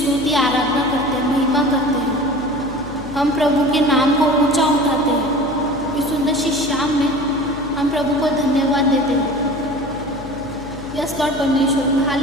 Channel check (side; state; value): left; noise; hum, 15 dB below the sound